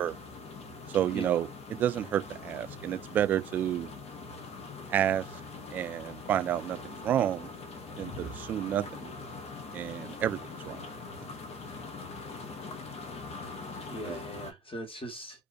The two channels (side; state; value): left; quieter; 7.7 dB